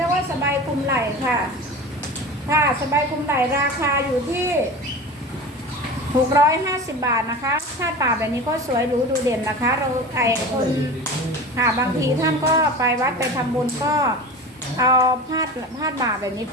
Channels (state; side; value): normal; both; correlation 0.33